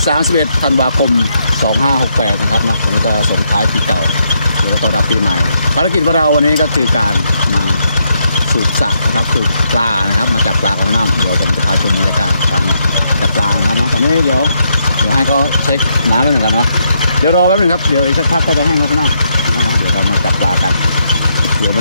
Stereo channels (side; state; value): both; inverted; correlation -0.78